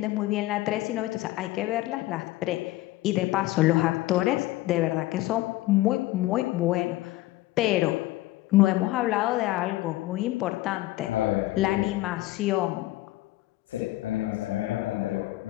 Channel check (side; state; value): right; quieter; 17.5 dB